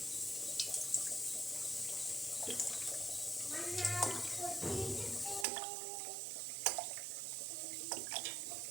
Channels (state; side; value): drops out; left; at 5.5 s